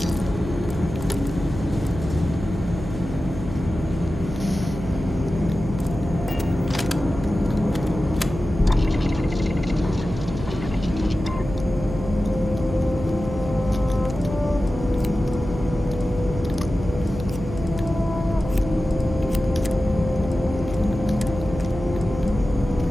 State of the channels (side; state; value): right; noise; hum, 9 dB below the sound